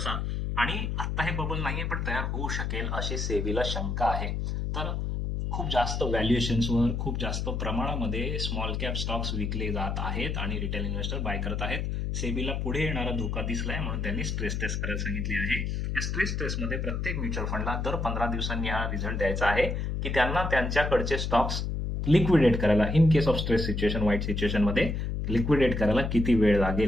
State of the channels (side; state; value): left; noise; hum, 1 dB below the sound